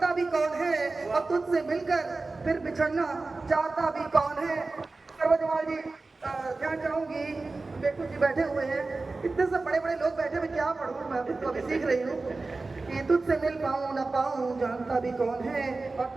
भी कौन है, और तुझसे मिलकर फिर बिछड़ना चाहता भी कौन है। सर्वजवाल जी ध्यान चाहूंगी, बेकू जी बैठे हुए हैं, इतने से बड़े बड़े लोग बैठे हुए, क्या पढ़ूं मैं तो अभी सीख रही हूँ कि तुझसे मिल पाऊं न पाऊं जानता भी कौन है, और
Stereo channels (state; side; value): quieter; left; 3.6 dB